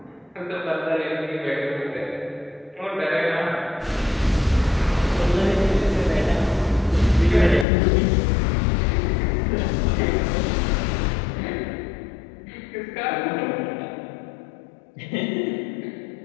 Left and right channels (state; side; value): drops out; right; at 7.7 s